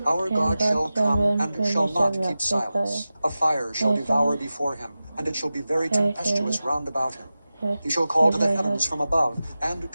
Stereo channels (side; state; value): both; inverted; correlation -0.94